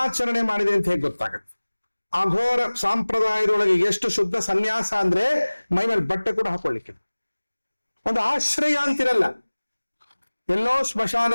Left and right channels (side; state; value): both; inverted; correlation -1.00